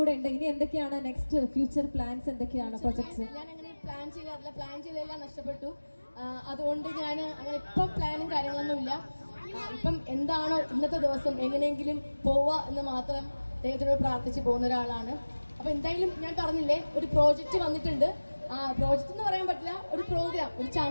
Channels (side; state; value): both; inverted; correlation -1.00